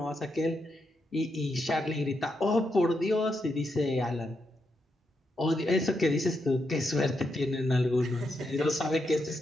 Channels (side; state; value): both; normal; correlation 0.83